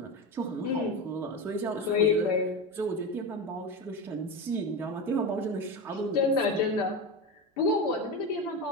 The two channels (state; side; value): normal; both; correlation 0.20